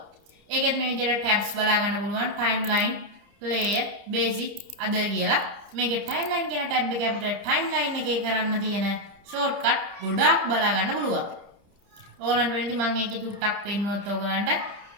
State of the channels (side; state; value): left; late; 30 ms